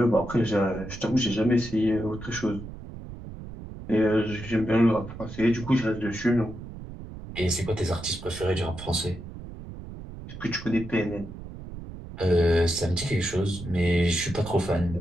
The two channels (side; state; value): right; noise; rumble, 12 dB below the sound